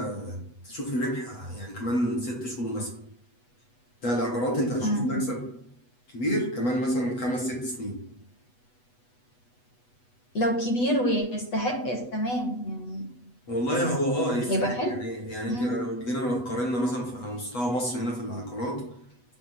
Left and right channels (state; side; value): late; right; 8.1 ms